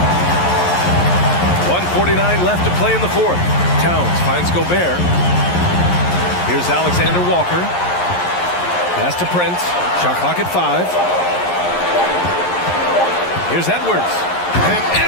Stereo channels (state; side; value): late; right; 11 ms